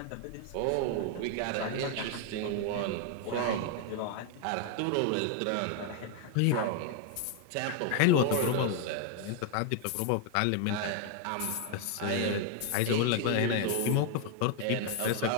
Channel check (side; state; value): both; different; correlation 0.00